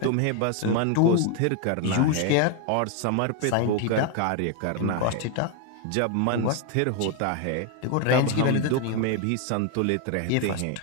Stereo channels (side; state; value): both; different; correlation 0.01